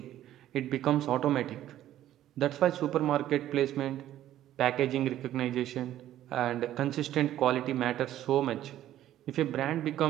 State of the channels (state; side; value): quieter; left; 12.7 dB